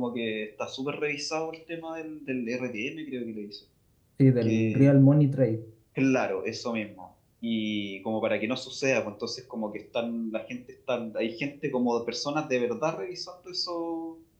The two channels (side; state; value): both; identical; correlation 1.00